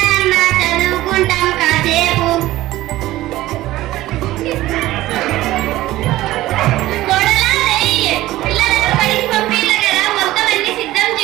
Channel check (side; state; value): left; quieter; 16.3 dB